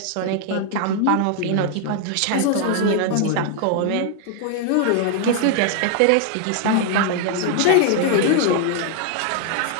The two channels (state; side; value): different; both; correlation 0.00